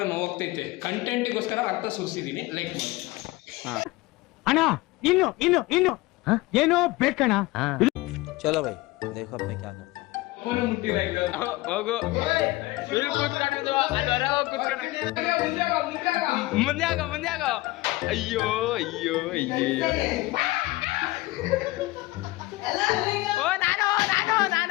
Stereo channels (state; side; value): quieter; right; 20.2 dB